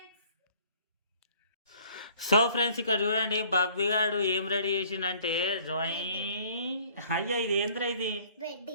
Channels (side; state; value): both; inverted; correlation -0.56